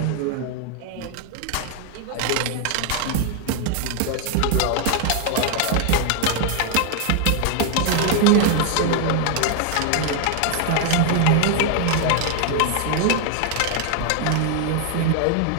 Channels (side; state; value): both; different; correlation 0.00